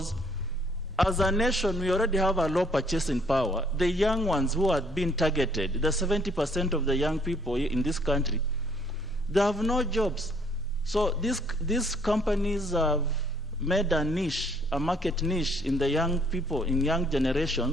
as a nation, we already have a low purchasing power. The young ones who are being targeted, the 70% of the young people in this country, they have no jobs. So these companies have made a niche, a market niche in the young people, in young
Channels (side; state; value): both; normal; correlation 0.64